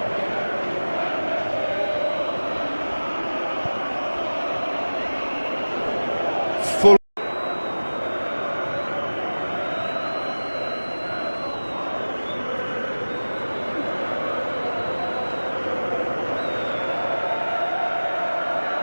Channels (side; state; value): both; inverted; correlation -1.00